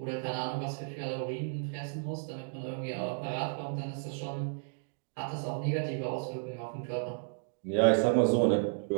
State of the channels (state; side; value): silent; left; digital silence